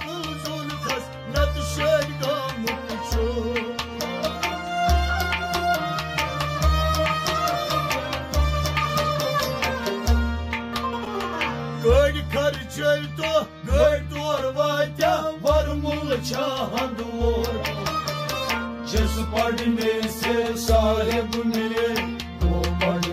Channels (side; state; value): both; identical; correlation 1.00